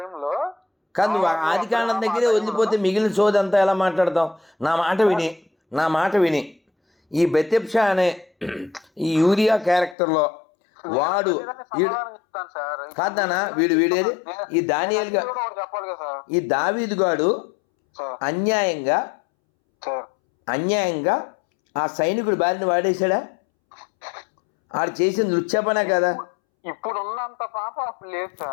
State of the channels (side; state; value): right; drops out; at 10.0 s